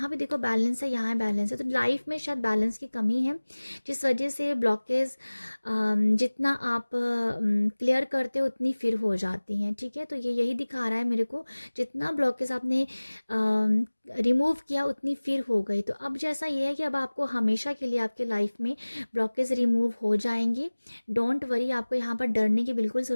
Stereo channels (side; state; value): both; inverted; correlation -1.00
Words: भी देखो बैलेंस है, यहाँ बैलेंस है, तो लाइफ में शायद बैलेंस की कमी है, जिस वजह से ब्लॉकेज जितना आप क्लियर करते हो उतनी फिर हो जाती हैं, ठीक है। तो ये यही दिखा रहा है मेरे को, जितना ब्लॉकेज आपने रिमूव किया उतनी फिर हो गई। तो अब जैसा ये है कि अब आपको हमेशा के लिए आपके लाइफ में ब्लॉकेज रिमूव हो जाएंगे। डोंट वरी, आपको यहाँ पर डरने की बिल्कुल